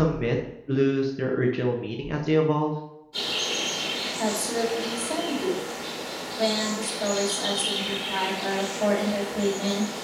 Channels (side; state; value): both; identical; correlation 1.00